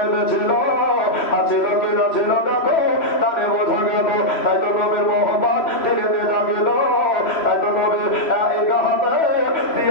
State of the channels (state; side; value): late; right; 3.0 ms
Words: ছিল আছিল কিনা ছিল দেখো তারে বোঝা গেল। তাই তো কবির মোহাম্মদ ধীরে ধীরে জাগিল, তাই তো কবির এই গাহাতে